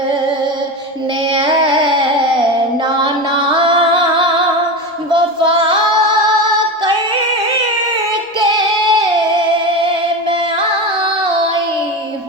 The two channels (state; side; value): normal; both; correlation 0.22